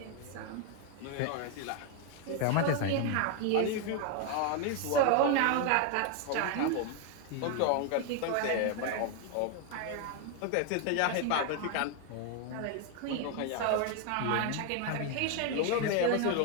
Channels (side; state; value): both; different; correlation 0.01